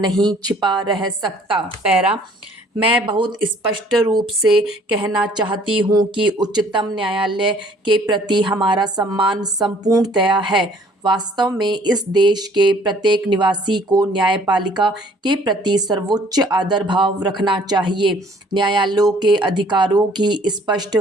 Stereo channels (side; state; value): both; normal; correlation 0.57